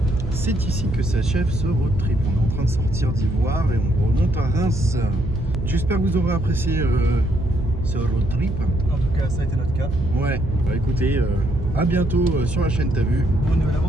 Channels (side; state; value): right; noise; hum, 5 dB below the sound